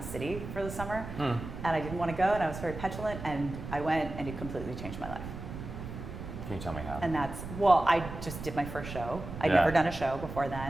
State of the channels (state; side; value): noise; right; rumble, 9 dB below the sound